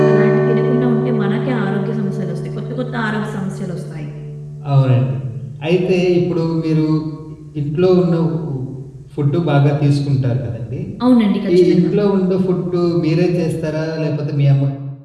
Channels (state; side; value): identical; both; correlation 1.00